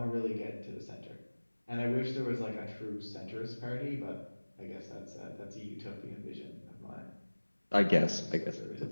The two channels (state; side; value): inverted; both; correlation -1.00